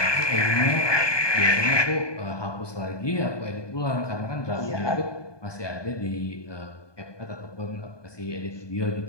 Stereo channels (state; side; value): late; right; 1.2 ms